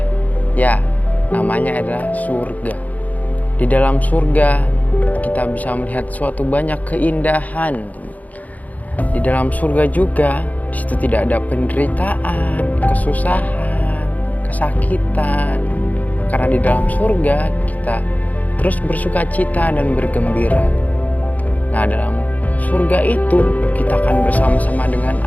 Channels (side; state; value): right; late; 0.077 ms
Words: Ya, namanya adalah surga. Di dalam surga kita bisa melihat suatu banyak keindahan. Di dalam surga juga di situ tidak ada penderitaan, kesusahan, kesakitan. Karena di dalam surga kita terus bersuka cita dan bergembira. Nah, dalam surga itu kita akan bersama-sama dengan